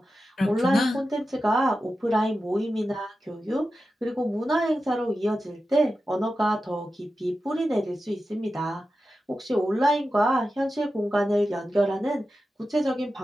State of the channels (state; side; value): normal; both; correlation 0.92